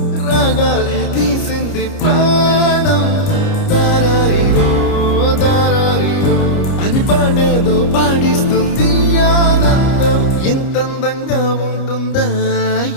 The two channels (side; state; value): right; late; 29 ms